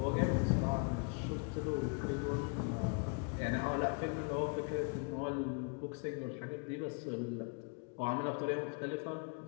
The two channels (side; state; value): right; quieter; 35.7 dB